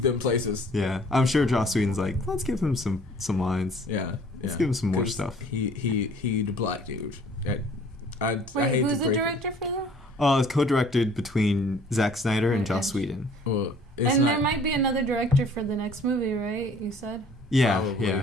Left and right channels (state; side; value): normal; both; correlation 0.54